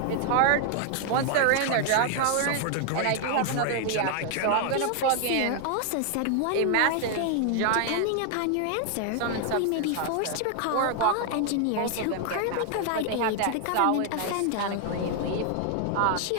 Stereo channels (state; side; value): different; both; correlation 0.00